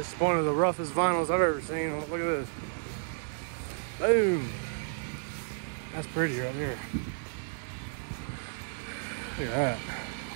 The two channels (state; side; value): silent; left; digital silence